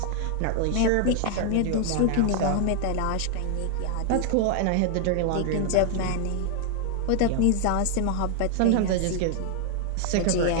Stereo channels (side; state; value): both; different; correlation 0.00